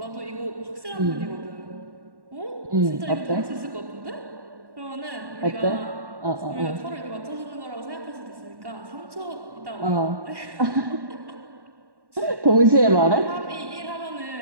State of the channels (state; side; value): late; left; 1.1 ms